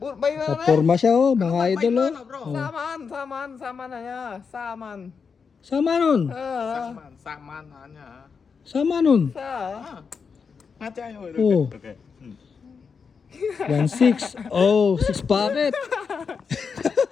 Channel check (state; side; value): quieter; right; 5.7 dB